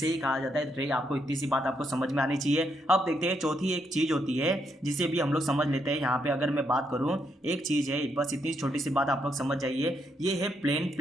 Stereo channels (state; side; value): normal; both; correlation 0.77